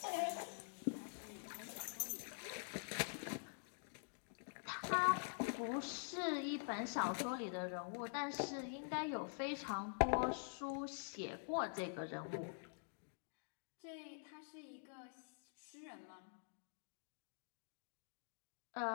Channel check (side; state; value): right; silent; digital silence